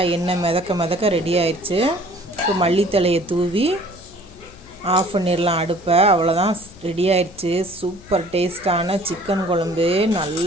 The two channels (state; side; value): noise; left; hum, 22 dB below the sound